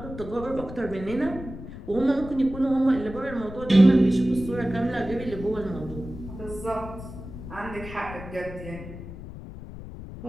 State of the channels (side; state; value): left; noise; rumble, 12 dB below the sound